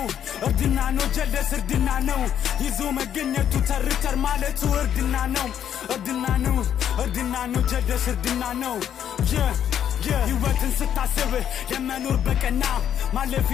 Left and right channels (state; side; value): quieter; right; 9.6 dB